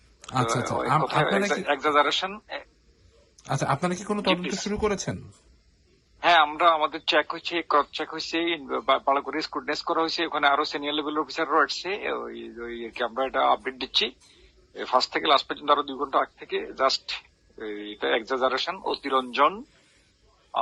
আচ্ছা আচ্ছা, আপনারা কি এক্সাজারেশন। আচ্ছা আপনারা কি কোনো তদন্ত শুরু করেছেন? হ্যাঁ, আমরা আমাদের চেক হয়েছে, ক্রস চেক হয়েছে, ভালো করে স্ক্রুটনাইজ করা হয়েছে। ওখানে আরো সিনিয়র লেভেল অফিসাররা আসছে। ওই আমরা এটা আপডেট দিচ্ছি ফার্স্ট থেকে লাস্ট পর্যন্ত, আরো 2 ঘন্টা আগ থেকে। জাস্ট এটা এক্সাজারেশন, অতিরঞ্জন,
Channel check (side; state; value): both; identical; correlation 1.00